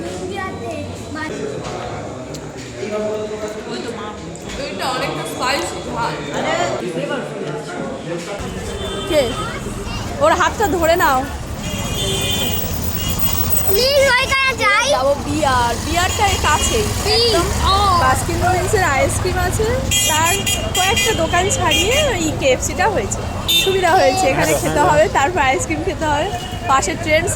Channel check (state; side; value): identical; both; correlation 1.00